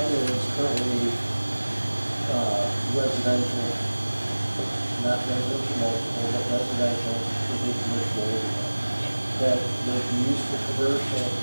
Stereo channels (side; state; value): both; inverted; correlation -1.00